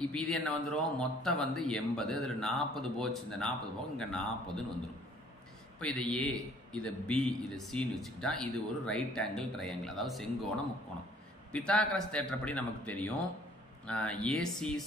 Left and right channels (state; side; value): normal; both; correlation 0.57